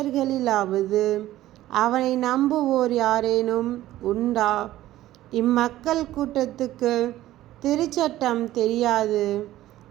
அவனை நம்புவோர் யாரேனும் உண்டா? இம்மக்கள் கூட்டத்துக்கு திருச்சட்டம் தெரியாது,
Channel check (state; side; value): quieter; left; 14.7 dB